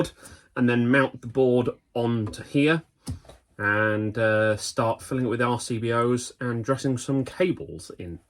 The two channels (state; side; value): identical; both; correlation 1.00